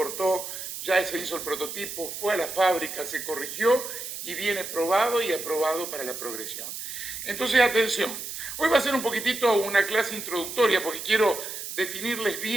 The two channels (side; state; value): right; noise; hiss, 8 dB below the sound